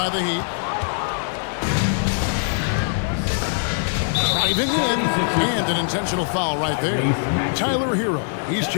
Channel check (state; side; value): silent; right; digital silence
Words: the Heat. Driving in. And an intentional foul right there. Tyler Hero. He's